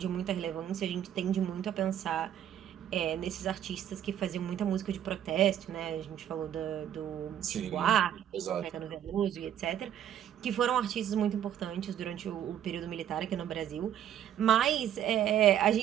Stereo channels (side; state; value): left; quieter; 10.4 dB